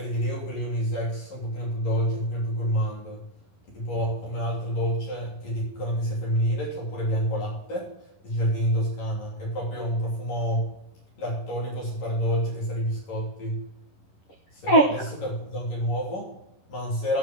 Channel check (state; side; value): late; right; 11 ms